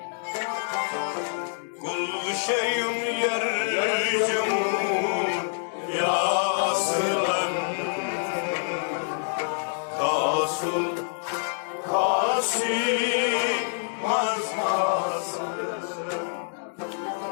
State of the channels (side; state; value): right; silent; digital silence